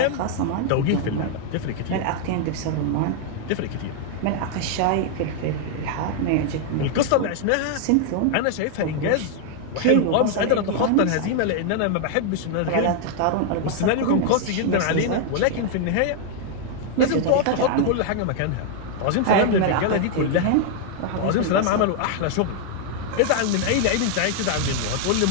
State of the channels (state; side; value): different; both; correlation 0.00